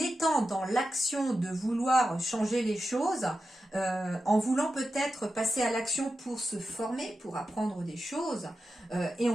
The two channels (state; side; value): normal; both; correlation 0.91